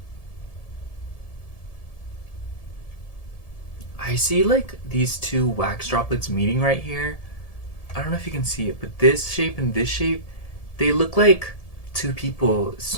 I see like these two wax droplets meeting right here. I don't know if you can see it, but this shape and this shape, they look like two people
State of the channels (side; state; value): right; late; 1.7 ms